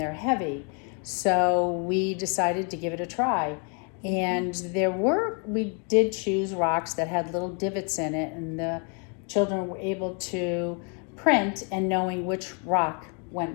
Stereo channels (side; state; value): right; quieter; 37.0 dB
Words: heavy. So we decided to give it a try. And we did choose rocks that had little divots in it, and the children were able to print and knowing which rock went